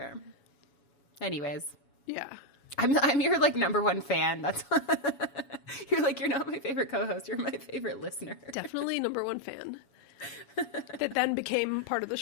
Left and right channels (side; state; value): right; late; 7.1 ms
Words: Anyways, Yeah. I'm your like number one fan. That's you're like, you're not my favorite co-host. You're my favorite listener. Definitely number one fan. That then became part of the